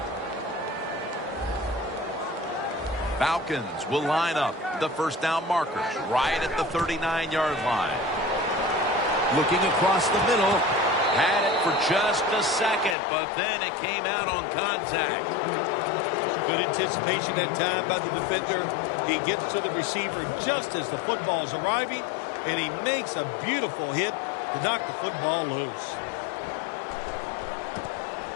Falcons will line up the first down markers right at the 39-yard line. Looking across the middle. Had it for just a second, but then it came out on contact. Good anticipation that time by the defender. He gets to the receiver just as the football is arriving, and he makes a beautiful hit to knock the football loose.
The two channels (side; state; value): right; drops out; at 13.0 s